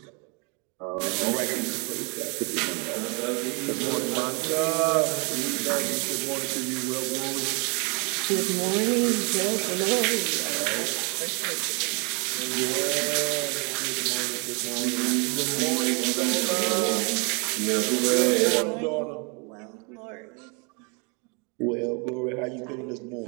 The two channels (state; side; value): quieter; left; 33.3 dB